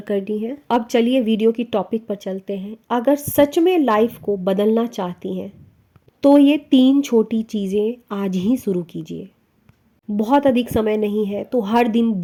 करनी है। अब चलिए वीडियो की टॉपिक पर चलते हैं। अगर सच में लाइफ को बदलना चाहती हैं तो ये 3 छोटी चीज़ें आज ही शुरू कीजिए। बहुत अधिक समय नहीं है तो हर दिन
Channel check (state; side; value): identical; both; correlation 1.00